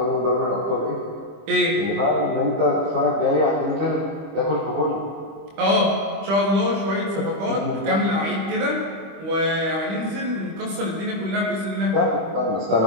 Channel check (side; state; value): left; late; 25 ms